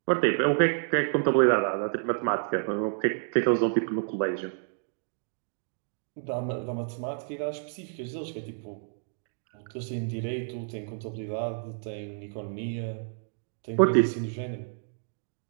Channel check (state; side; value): silent; left; digital silence